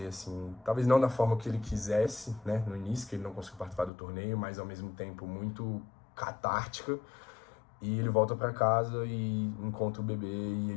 assim, talvez não da forma que ele quisesse, né, no início, que ele não conseguiu participar do torneio, mas ao mesmo tempo muito catártica. E ele volta para casa e encontra o bebê,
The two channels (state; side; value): drops out; right; at 3.9 s